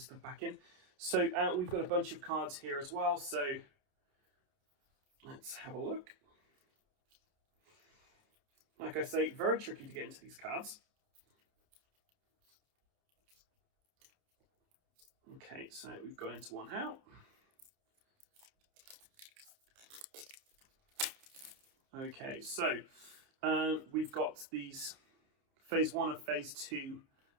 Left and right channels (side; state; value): left; late; 29 ms